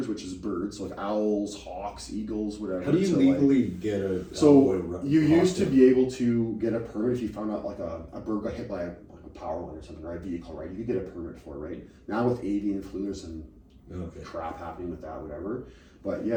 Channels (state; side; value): identical; both; correlation 1.00